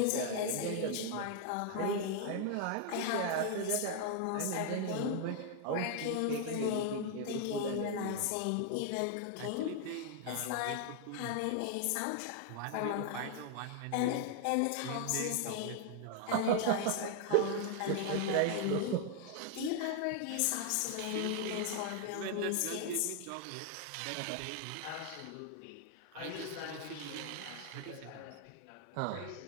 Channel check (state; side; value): different; both; correlation 0.00